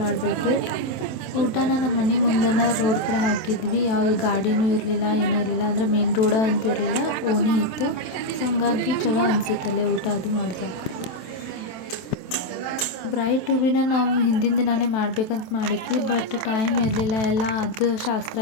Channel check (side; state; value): right; late; 27 ms